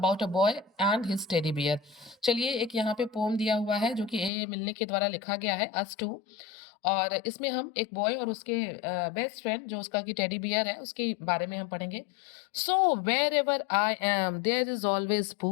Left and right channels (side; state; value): right; drops out; at 4.3 s